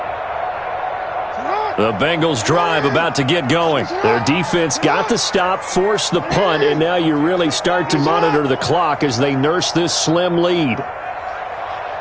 The Bengals drive about to get going. Their defense got the stop, forced the punt, and now you really start to monitor the clock as they nurse this slim lead.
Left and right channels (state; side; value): identical; both; correlation 1.00